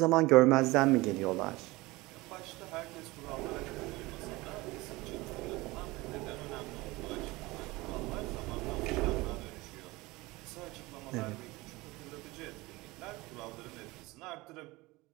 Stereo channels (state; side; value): quieter; left; 21.5 dB